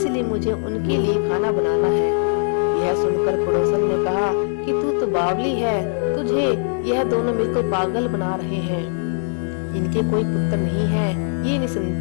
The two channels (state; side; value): silent; right; 63 dB below the other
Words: मुझे उनके लिए खाना बनाना है। यह सुनकर पड़ोसन ने कहा कि तू तो बावली है, तुझे यह दोनों मिलकर पागल बना रहे हैं। इनके कोई पुत्र नहीं है, ये